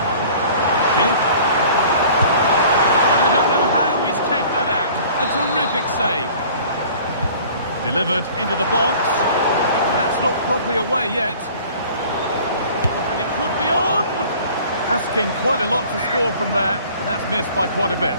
Schick. A terrific save. Delivered into the box. That's not properly away yet. And it could be on! Asking quite a lot to score from there, and that's missed by quite a bit.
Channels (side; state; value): both; inverted; correlation -0.48